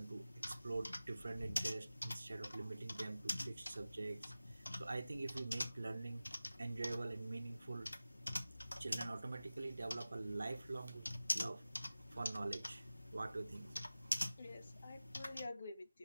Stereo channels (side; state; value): both; inverted; correlation -0.96